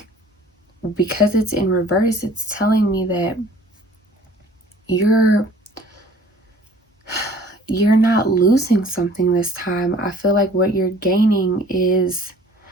because it's in reverse, it's telling me that you're not losing something this time. I feel like what you're gaining is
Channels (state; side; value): normal; both; correlation 0.52